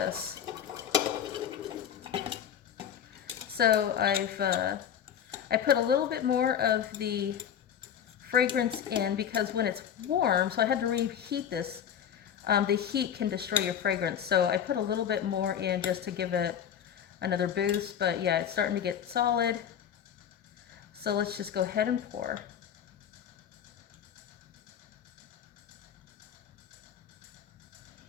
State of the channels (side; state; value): right; quieter; 9.0 dB